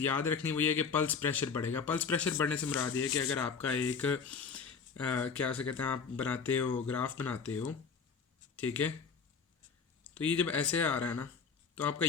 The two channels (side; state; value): right; quieter; 5.7 dB